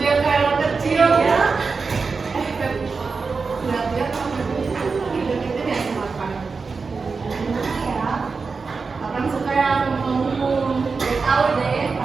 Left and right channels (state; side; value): quieter; left; 4.6 dB